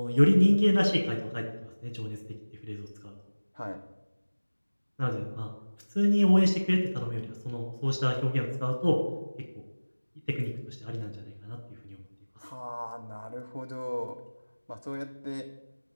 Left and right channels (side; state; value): both; inverted; correlation -1.00